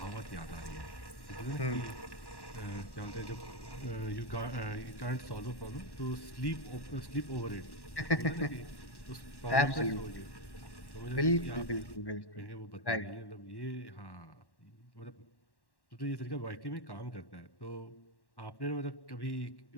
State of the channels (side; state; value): right; late; 1.1 ms